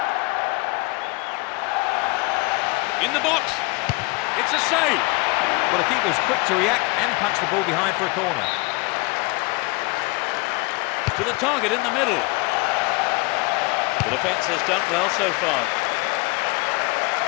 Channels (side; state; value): right; quieter; 25.8 dB